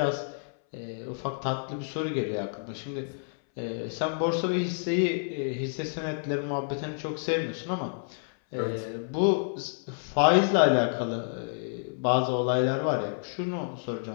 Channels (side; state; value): right; silent; 59 dB below the other